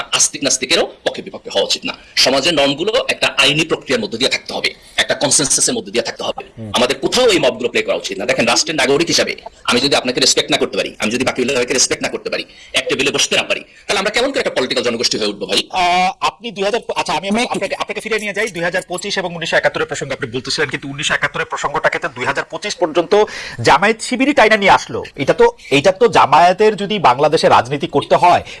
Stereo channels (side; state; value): both; identical; correlation 1.00